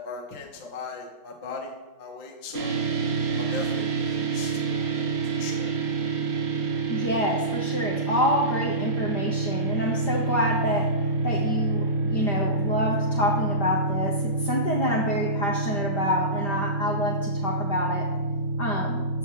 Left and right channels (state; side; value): late; right; 5.0 ms